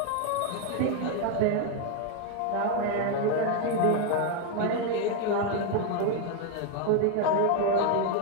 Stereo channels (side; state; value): both; different; correlation 0.01